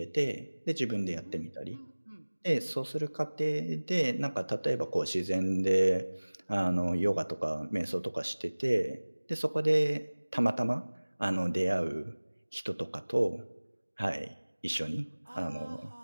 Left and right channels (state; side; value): inverted; both; correlation -1.00